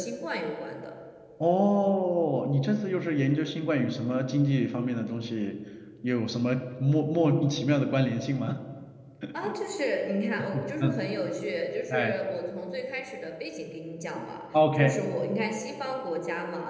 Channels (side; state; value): both; identical; correlation 1.00